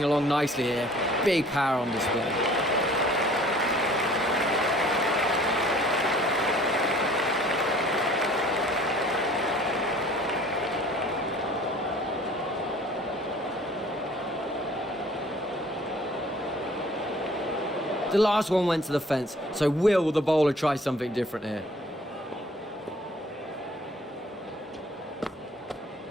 along nicely here. Big power on display. The last one went to the fence, so will the bowler try something different here?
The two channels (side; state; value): both; normal; correlation 0.52